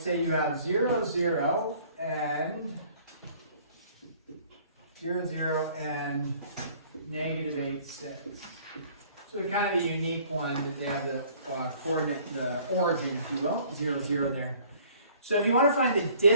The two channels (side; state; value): both; inverted; correlation -0.55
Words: say you have 0, 0, and 0, 0, and negative 8, 6. So kind of a unique one that they have the coordinate, the origin, if you will, 0, 0 there. So if you want to find the